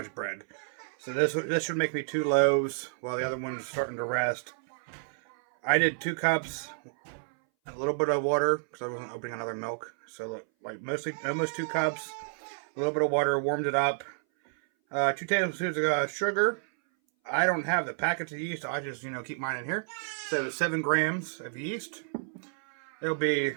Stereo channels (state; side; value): silent; left; 58 dB below the other